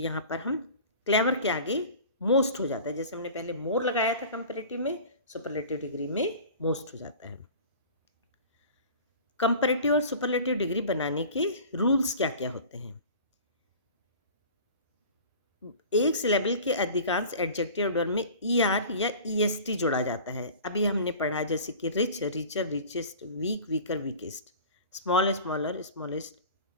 पर हम क्लेवर के आगे मोस्ट हो जाता है। जैसे हमने पहले मोर लगाया था कंपेरेटिव में, सुपरलेटिव डिग्री में मोस्ट हो जाता है। कंपेरेटिव और सुपरलेटिव डिग्री बनाने के रूल्स क्या क्या होते हैं? एक सिलेबल के अधिकांश एडजेक्टिव वर्ड में ई आर या ई एस टी जोड़ा जाता है। अभी हमने पढ़ा, जैसे कि rich, richer, richest, weak, weaker, weakest, small, smaller, smallest,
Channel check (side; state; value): both; inverted; correlation -0.41